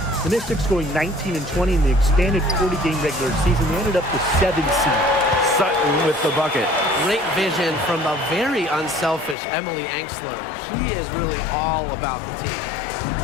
The Mystics going 19-20 in the expanded 40-game regular season. They ended up the 7th seed. Sutton with the bucket. Great vision from the very unselfish Emily Angsler. She is really all about the team.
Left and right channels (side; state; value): right; drops out; at 9.3 s